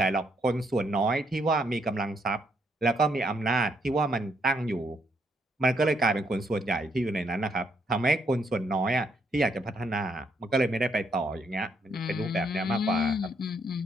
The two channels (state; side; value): normal; both; correlation 0.74